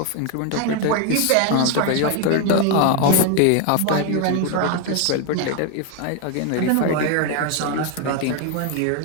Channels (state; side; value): different; both; correlation 0.01